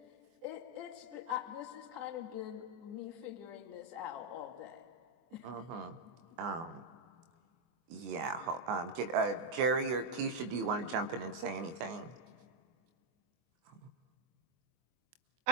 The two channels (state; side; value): late; left; 24 ms